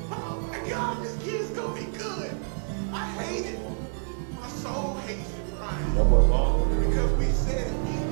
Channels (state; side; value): silent; left; digital silence